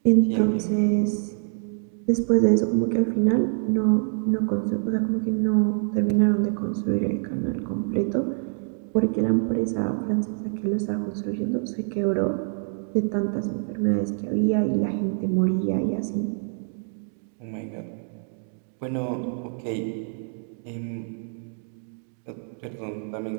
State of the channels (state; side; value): silent; left; 61 dB below the other